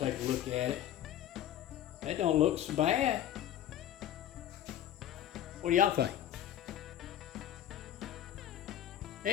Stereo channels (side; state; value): right; quieter; 11.3 dB